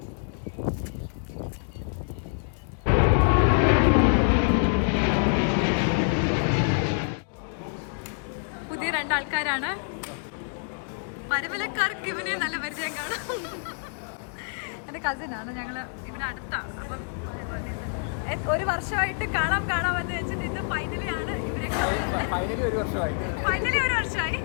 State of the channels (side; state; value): right; silent; 60 dB below the other